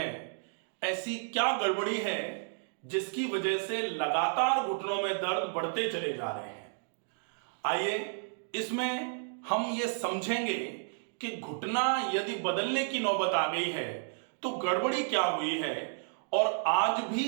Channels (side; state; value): left; silent; digital silence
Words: ऐसी क्या गड़बड़ी है जिसकी वजह से लगातार घुटनों में दर्द बढ़ते चले जा रहे हैं? आइए इसमें हम ये समझेंगे कि घुटना यदि बदलने की नौबत आ गई है तो गड़बड़ी क्या हुई है, और आज